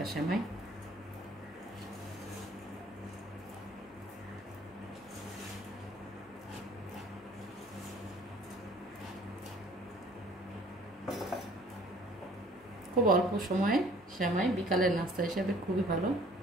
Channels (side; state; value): both; normal; correlation 0.53